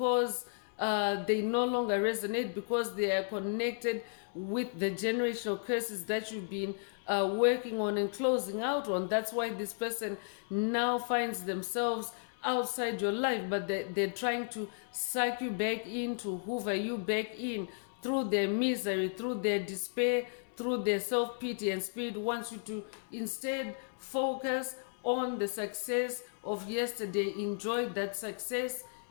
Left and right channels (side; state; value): right; silent; 55 dB below the other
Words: they no longer resonate, because they are connected with the generational curses that you've been working on and closing out on. That's why this person now finds themselves outside your life, but they're trying to suck you back in, to hoover you back in through their misery, through their despair, through their self-pity. And Spirit wants you to instead focus on the success of yesterday. Enjoy that success